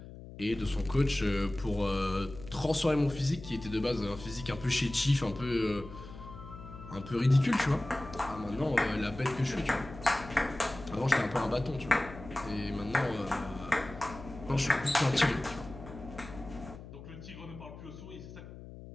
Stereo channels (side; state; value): left; noise; hum, 14 dB below the sound